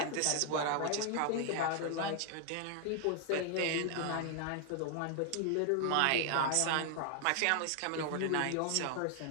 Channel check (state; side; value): different; both; correlation 0.00